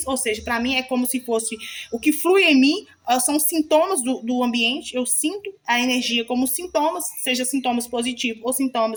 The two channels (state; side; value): identical; both; correlation 1.00